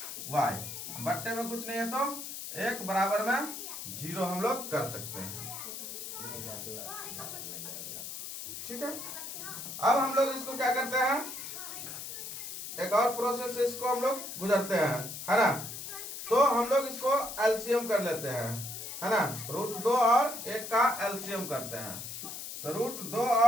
बट्टे में कुछ नहीं है, तो 1 बराबर में 0 हम लोग कर सकते हैं। ठीक है, अब हम लोग इसको क्या करते हैं? एक और प्रोसेस से इसको हम लोग गुजरते हैं, है ना। तो हम लोग इसको एलसीएम कर लेते हैं, है ना। रूट 2 और 1 का एलसीएम करते हैं। तो रूट 2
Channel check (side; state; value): left; noise; hiss, 8 dB below the sound